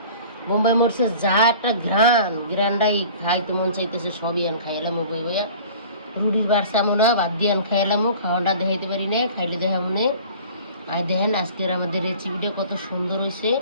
বোম্বাই মরিচের যা একটা গ্রানটাই খাইতে মন চাইতেছে, সবই আন খাইলাম বই বইয়া। রুটির বাড়ছে আমরা বাদ দিয়ে আন খাইলামও, খাওয়াটা দেখাইতে পারি না, খাইলে দেখা মনে। আর দেখেন আজকের আমাদের রেসিপিটা কত সুন্দর হয়েছে।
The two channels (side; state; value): both; inverted; correlation -0.45